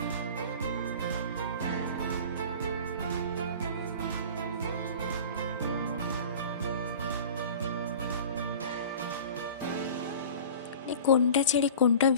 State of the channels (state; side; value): inverted; both; correlation -0.40